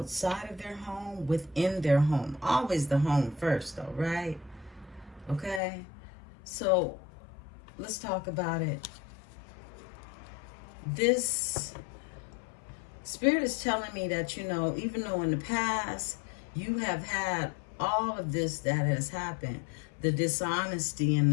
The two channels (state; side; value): drops out; right; at 5.6 s